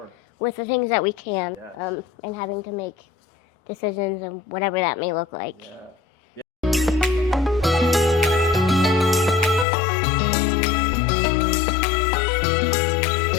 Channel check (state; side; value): drops out; right; at 9.7 s